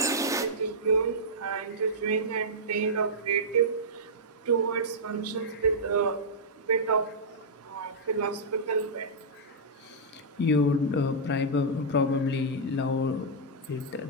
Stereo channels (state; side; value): normal; both; correlation -0.09